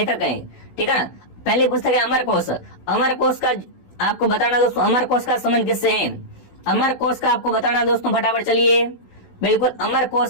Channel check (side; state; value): right; late; 16 ms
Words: है, ठीक है ना। पहली पुस्तक है अमर कोश। अमर कोश का आपको बताना दोस्तों, अमर कोश का संबंध किससे है? अमर कोश का आपको बताना दोस्तों, फटाफट चलिए। बिल्कुल अमर